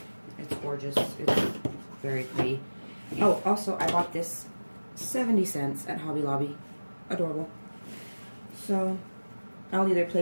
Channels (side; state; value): both; inverted; correlation -1.00